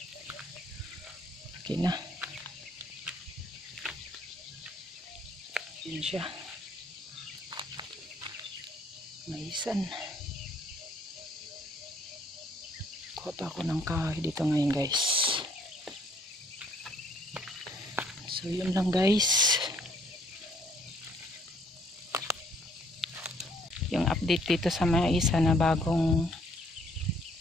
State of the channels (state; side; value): normal; both; correlation 0.65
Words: Okay na. Yan siya. Maisan. Kuha pa ako ng kahoy dito ngayon guys. So yun lang guys. Yung update dito sa maisa na bagong